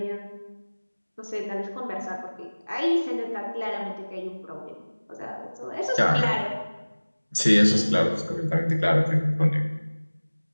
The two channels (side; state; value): both; inverted; correlation -1.00